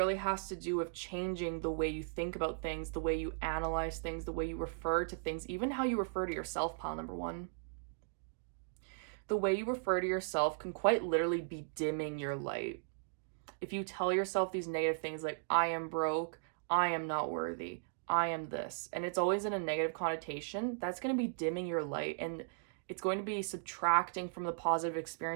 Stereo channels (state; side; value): silent; left; digital silence